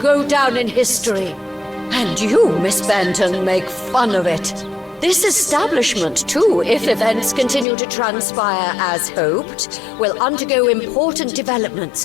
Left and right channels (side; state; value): right; drops out; at 7.7 s